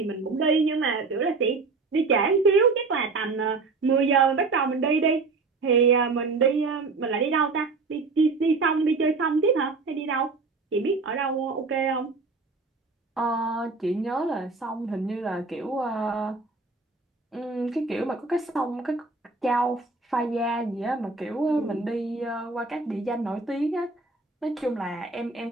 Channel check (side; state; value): left; quieter; 4.0 dB